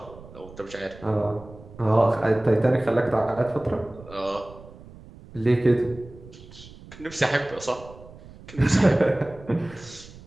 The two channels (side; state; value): right; noise; rumble, 19 dB below the sound